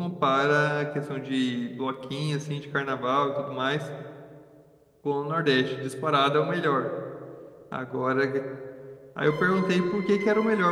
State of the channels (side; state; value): both; identical; correlation 1.00